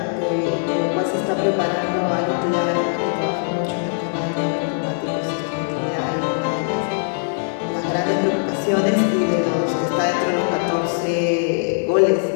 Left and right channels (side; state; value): right; silent; digital silence